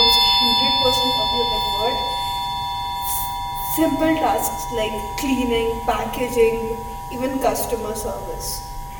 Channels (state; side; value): identical; both; correlation 1.00